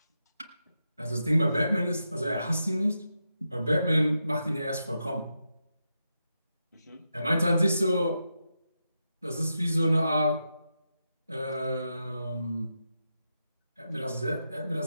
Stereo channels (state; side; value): inverted; both; correlation -0.87